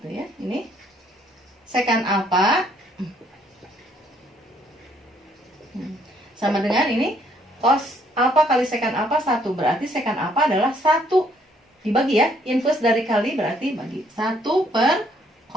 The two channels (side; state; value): both; normal; correlation 0.66